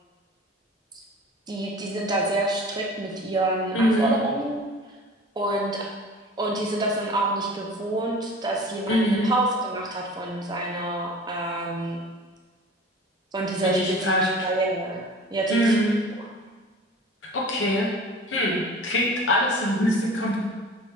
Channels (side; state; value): both; normal; correlation 0.41